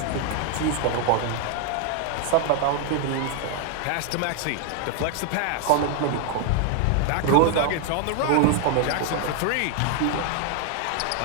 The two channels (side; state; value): both; different; correlation 0.00